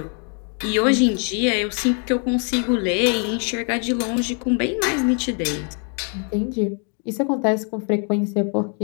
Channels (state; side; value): quieter; right; 40.0 dB